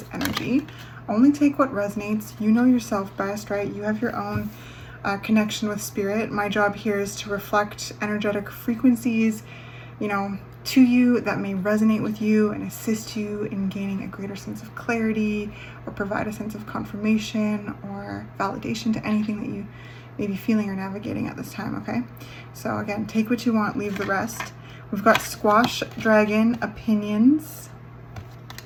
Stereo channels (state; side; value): identical; both; correlation 1.00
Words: energy. Only take what resonates. You know yourself best, right? You have your own connection with spirit. My job here is to reflect energetic frequencies, to you that may resonate with you and assist you in gaining a greater sense of clarity or provide a sense of confirmation or validation to anything that you may be feeling or navigating at this time, okay? So again, take what you want, leave the rest. We've got Squash Dragon Opinions.